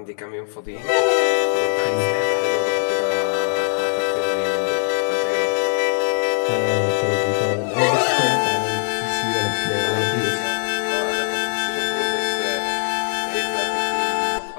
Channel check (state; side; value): silent; right; digital silence